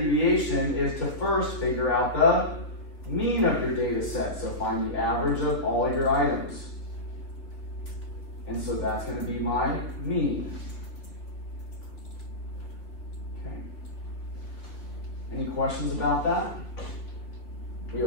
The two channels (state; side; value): late; right; 3.4 ms